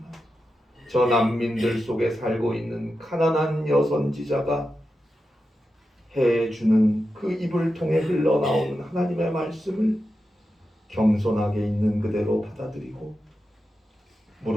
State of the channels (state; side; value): normal; both; correlation 0.90